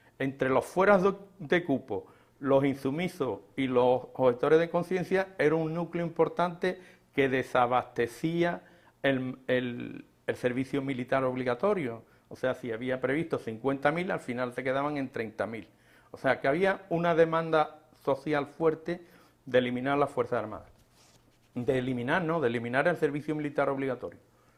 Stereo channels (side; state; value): both; identical; correlation 1.00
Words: Entre los fueras de cupo, los insumisos y los objetores de conciencia era un núcleo importante que desabastecía el servicio militar obligatorio. O sea, si había previsto 50.000, al final se quedaban en 30.000. O sea, que había una demanda social fuerte de eliminar las Fuerzas Armadas. De eliminar el servicio militar obligatorio.